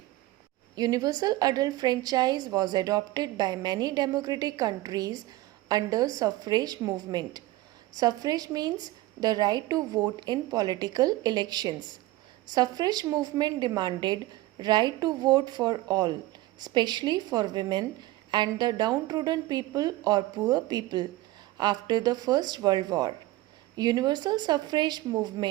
Universal adult franchise was adopted by many democratic countries under suffrage movement. Suffrage means the right to vote in political elections. Suffrage movement demanded right to vote for all, especially for women and the downtrodden people or poor people after the First World War. Universal suffrage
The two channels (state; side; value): quieter; left; 17.6 dB